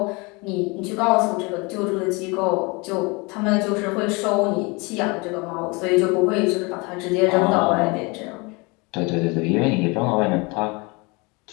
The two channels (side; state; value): right; quieter; 27.7 dB